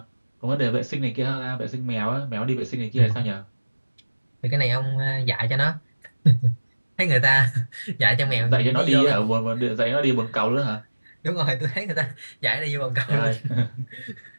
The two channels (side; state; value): both; inverted; correlation -1.00